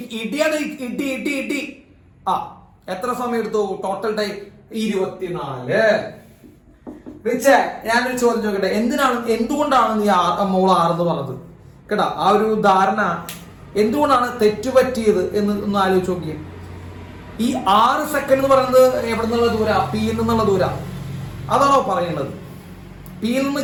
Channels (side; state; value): both; identical; correlation 1.00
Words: ഇടിയാണ്. ഇടി. എത്ര സമയം എടുത്തു? Total time 24. റിച്ചേ, ഞാനൊരു ചോദ്യം ചോദിക്കട്ടെ. എന്തുകൊണ്ടാണ് നീ മോൾ 6 എന്ന് പറഞ്ഞത്? കേട്ടാ, ആ ഒരു ധാരണ എന്തുകൊണ്ടാണ് തെറ്റുപറ്റിയത് എന്ന് ഒന്ന് ആലോചിച്ച് നോക്കിയേ. ഈ 6 സെക്കൻഡ് എന്ന് പറയുന്നത് എവിടെ നിന്നുള്ള ദൂര? പിയിൽ നിന്നുള്ള ദൂര. അതാണോ പറയുന്നത്? പിയിൽ നിന്ന്